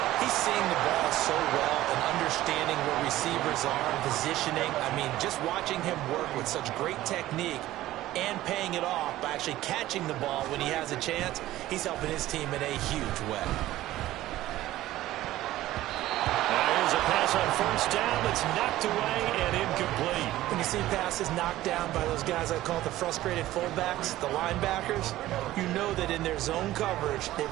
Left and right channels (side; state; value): left; quieter; 15.3 dB